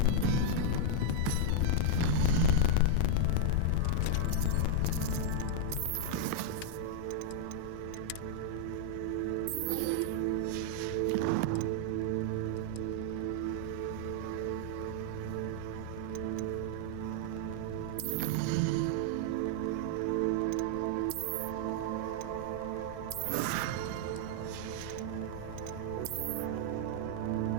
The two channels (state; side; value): different; both; correlation -0.01